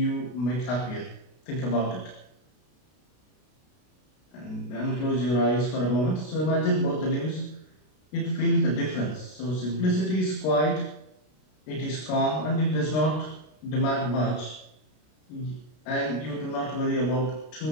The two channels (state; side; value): late; right; 32 ms